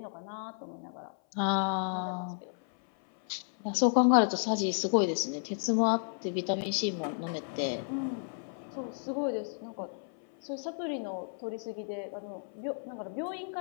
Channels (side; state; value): right; silent; 56 dB below the other